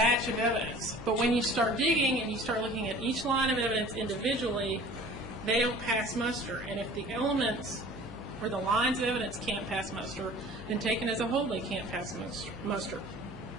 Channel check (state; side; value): noise; left; hum, 15 dB below the sound